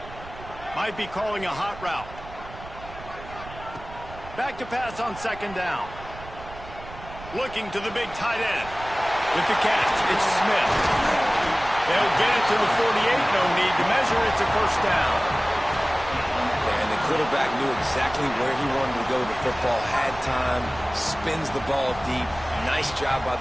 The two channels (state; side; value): noise; right; rumble, 15 dB below the sound